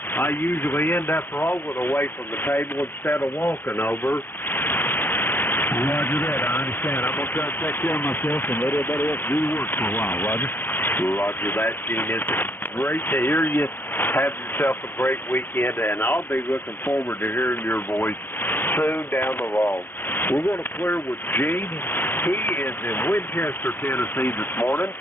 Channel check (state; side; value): late; right; 0.099 ms